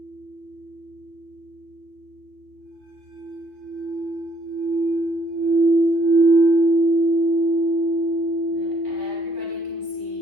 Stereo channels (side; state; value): left; late; 3.3 ms